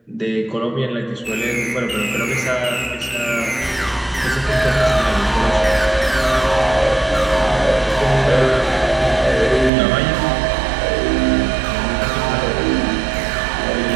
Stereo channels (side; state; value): left; drops out; at 9.7 s